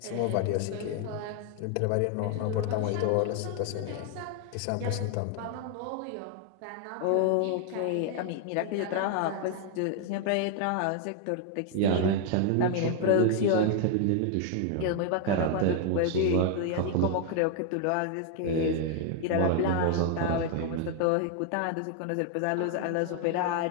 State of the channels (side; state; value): both; different; correlation 0.01